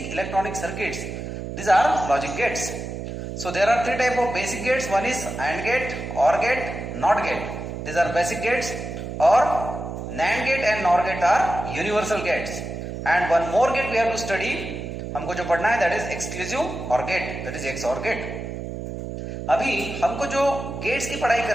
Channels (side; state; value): right; noise; hum, 7 dB below the sound